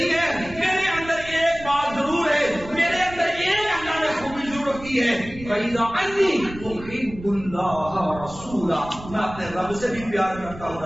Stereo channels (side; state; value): right; noise; rumble, 15 dB below the sound